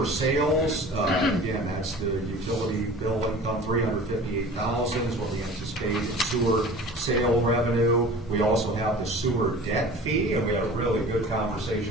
sales, again, that's the utility bill income, $358,000 is what we anticipate in sewer sale revenue. We also have the sewer debt fee, and we had a really good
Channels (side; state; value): both; normal; correlation 0.41